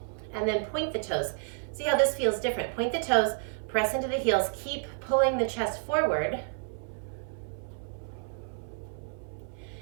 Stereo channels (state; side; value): silent; left; 58 dB below the other